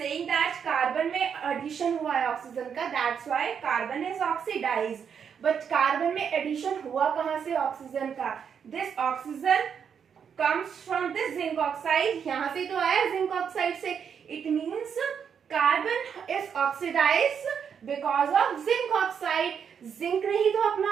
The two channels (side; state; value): left; quieter; 7.3 dB